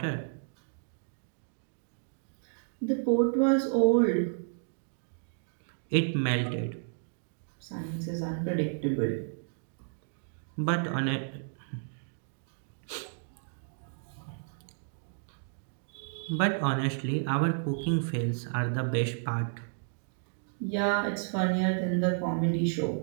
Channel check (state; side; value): silent; left; digital silence